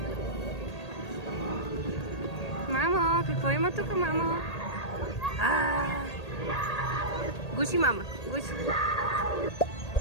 Мамо, какво има тук, мамо? Гуши, мама, гуши.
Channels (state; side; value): late; right; 1.8 ms